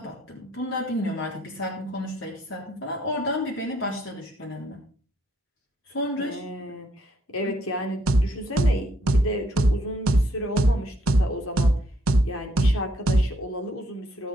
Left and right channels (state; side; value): normal; both; correlation 0.70